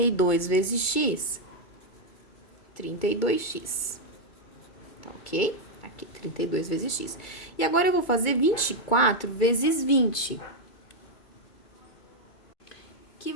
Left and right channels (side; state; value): right; late; 2.2 ms